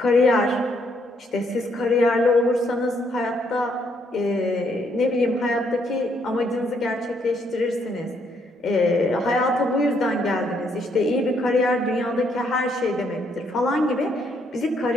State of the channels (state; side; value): normal; both; correlation 0.72